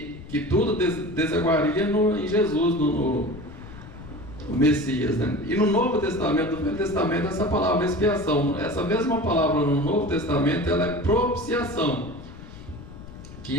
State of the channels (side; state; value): left; noise; rumble, 15 dB below the sound